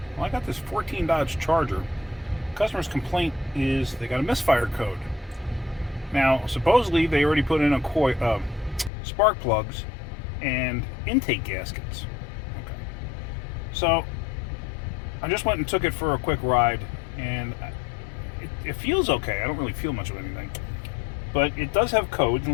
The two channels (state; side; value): drops out; right; at 8.9 s